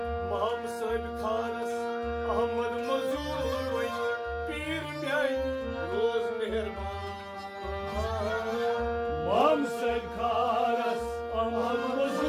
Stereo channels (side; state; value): both; identical; correlation 1.00